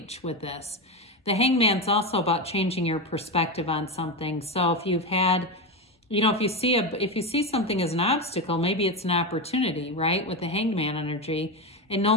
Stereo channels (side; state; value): both; normal; correlation 0.15